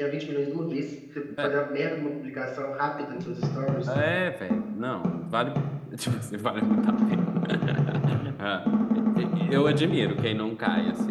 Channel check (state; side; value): identical; both; correlation 1.00